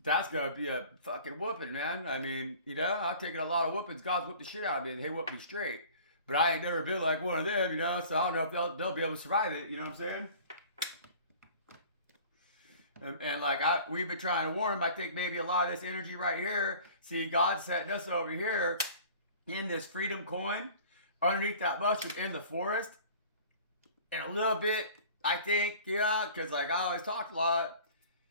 that's going to be a fucking whooping, man. I mean, you know, I've taken a lot of whoopings. God's whooped the shit out of me and they whooped me straight. But I ain't never been like one of them, you know, so I don't know if they'll be able to survive it, you know what I'm saying? And like we've been trying to warn them. I think maybe a lot of this energy right here, see, God's setting us over here in this freedom coin underneath that mushroom in the forest. And a little bit, I think, yeah, because like I always talk a lot.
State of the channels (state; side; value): inverted; both; correlation -0.45